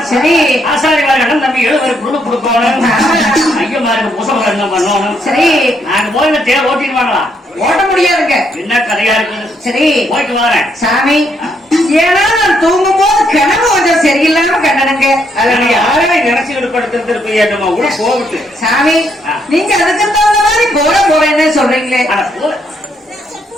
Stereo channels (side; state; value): both; normal; correlation 0.74